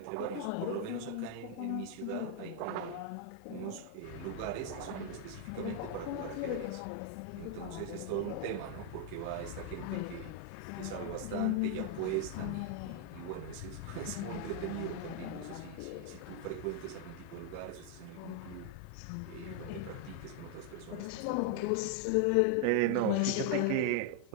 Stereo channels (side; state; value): both; different; correlation 0.00